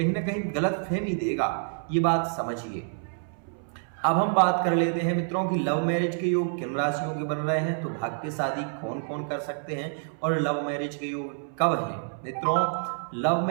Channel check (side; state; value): left; silent; 60 dB below the other